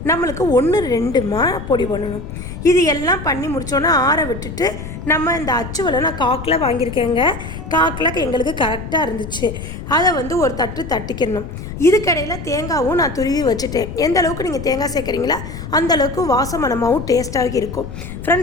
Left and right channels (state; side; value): noise; left; rumble, 9 dB below the sound